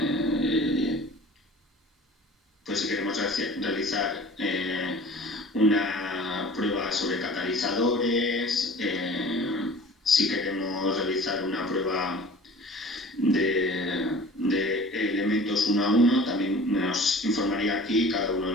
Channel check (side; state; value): both; normal; correlation 0.44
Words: si queremos realizar una prueba sobre catalizadores, si queremos realizar una prueba de elementos uno a uno, también nos informaría aquí cada uno de